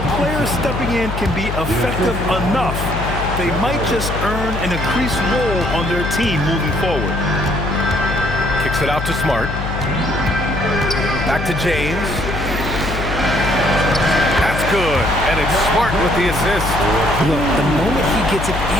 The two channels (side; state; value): left; noise; hum, 5 dB below the sound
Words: players stepping in can be effective enough, they might just earn an increased role on their team moving forward. Kicks it out to Smart. Back to James. That's good. And it's Smart with the assist. Look, the moment he gets it